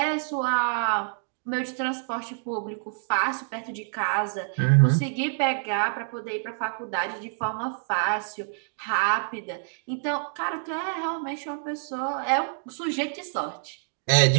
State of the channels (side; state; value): left; silent; digital silence